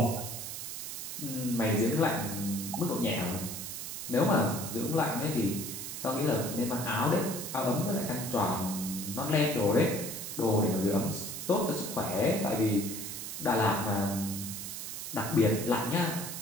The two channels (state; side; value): noise; right; hiss, 6 dB below the sound